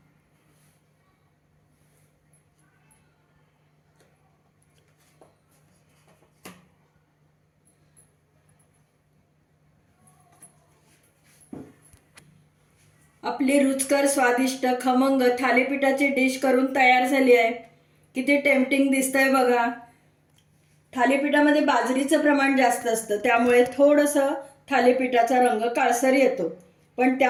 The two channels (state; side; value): identical; both; correlation 1.00